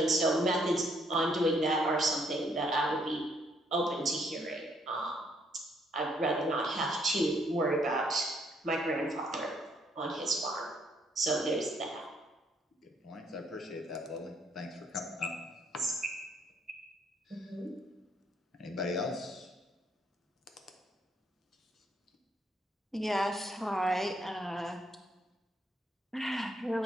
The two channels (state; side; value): normal; both; correlation 0.70